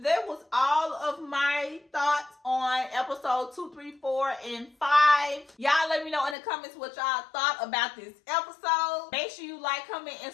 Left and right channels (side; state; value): right; drops out; at 6.4 s